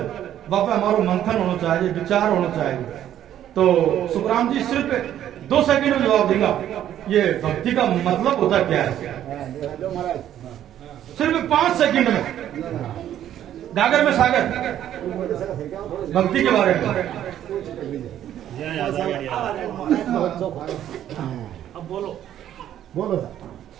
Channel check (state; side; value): quieter; left; 11.2 dB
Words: बापा हमारा मंथन होना चाहिए, विचार होना चाहिए। तो सुखराम जी सिर्फ 2 सेकंड में जवाब देगा ये भक्ति का मतलब होता क्या है, सिर्फ 5 सेकंड में गागर में सागर भक्ति के बारे में। अब बोलो बोलो